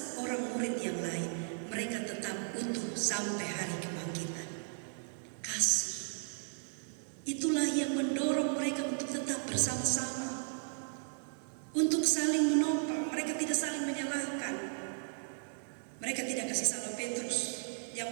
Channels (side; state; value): left; silent; digital silence